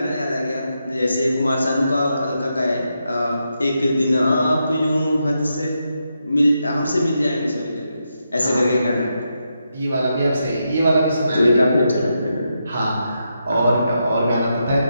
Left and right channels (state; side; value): inverted; both; correlation -0.84